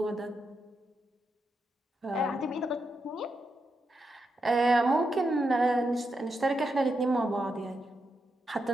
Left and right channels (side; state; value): both; normal; correlation 0.84